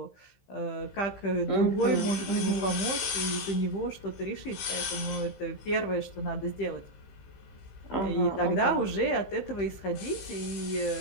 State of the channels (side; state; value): right; late; 15 ms